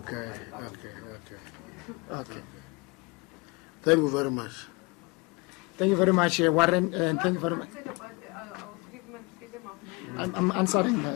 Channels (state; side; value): quieter; right; 26.6 dB